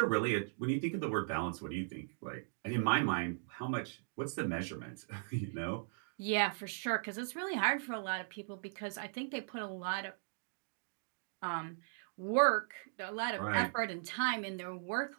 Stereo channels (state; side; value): silent; left; digital silence